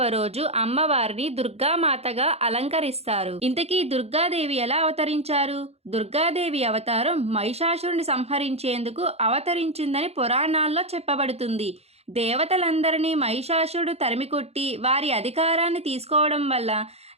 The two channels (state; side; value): late; left; 0.30 ms